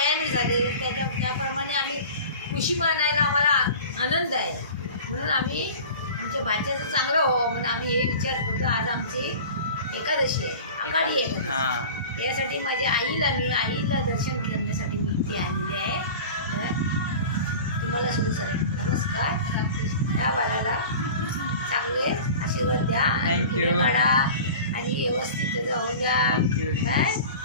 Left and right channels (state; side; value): inverted; both; correlation -0.38